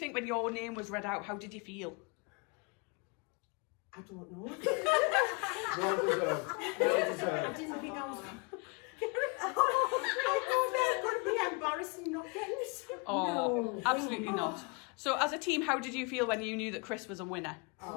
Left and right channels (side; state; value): right; quieter; 31.7 dB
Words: when your name was read out? How did you feel? I don't know. Well deserved. Well deserved. I didn't think I was. I thought that would be embarrassing not getting it. Oh, No. absolutely not. So as a team, how did you feel when you knew that Chris was a winner? The